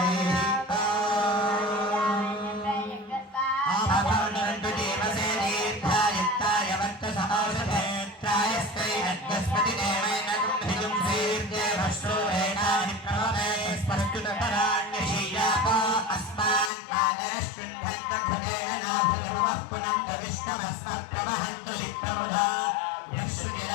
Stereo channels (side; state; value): right; drops out; at 16.7 s